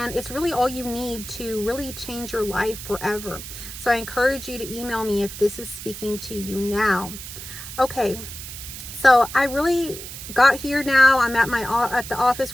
it's really all you need to really change your life forever. So I encourage you to email me if this is speaking to you now. Okay, so I really got here now. I'm at the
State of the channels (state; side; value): noise; right; hiss, 11 dB below the sound